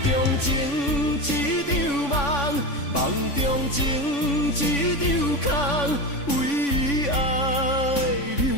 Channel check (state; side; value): late; right; 3.5 ms